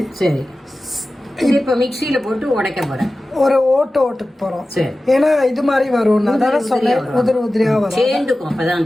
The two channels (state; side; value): normal; both; correlation 0.95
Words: சரி, இது இப்போ மிக்சியில் போட்டு உடைக்க போகிறேன். ஒரு ஓட்டுக்கு போகிறோம். சரி, ஏன்னா இது மாதிரி வரும். அதான சொன்னேன், உதிரியாக வரும். சேர்ந்துக்கும் அப்போதான்